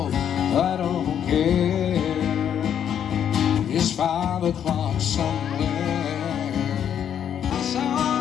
I don't care. It's 5 o'clock somewhere. I saw a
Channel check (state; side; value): quieter; right; 9.1 dB